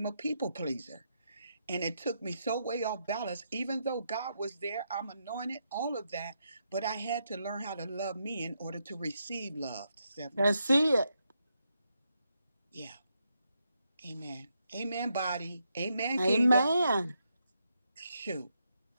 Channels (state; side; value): inverted; both; correlation -0.81